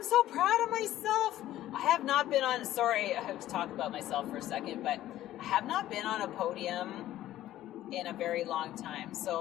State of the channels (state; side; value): quieter; right; 13.8 dB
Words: so proud of myself. I have not been on, I have to talk about myself for a second, but I have not been on a podium in a very long time.